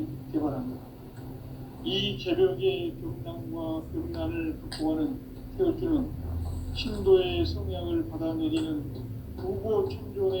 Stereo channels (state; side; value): identical; both; correlation 1.00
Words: 개발합니다. 이 개벽의 병난과 병난을 극복하는 태울주는 신도의 성향을 받아내리는 부고